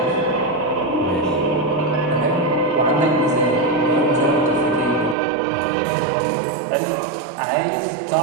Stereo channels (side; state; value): left; drops out; at 5.2 s